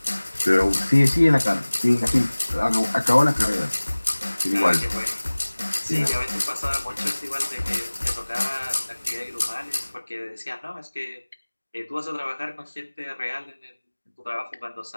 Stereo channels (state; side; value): inverted; both; correlation -1.00